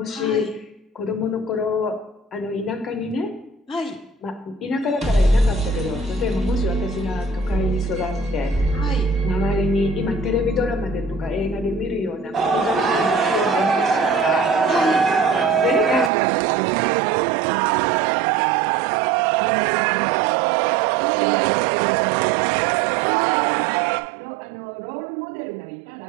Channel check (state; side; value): drops out; left; at 16.1 s